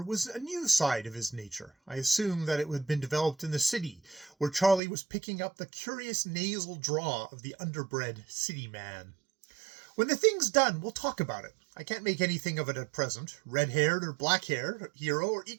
was a new side of his nature. I assumed that it had been developed in the city, where Charlie was picking up the curious nasal drawl of the underbred city man. When the thing's done, we'll talk about it. I can't make anything of it at present. Red-haired or black-haired hero are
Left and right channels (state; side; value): drops out; left; at 4.8 s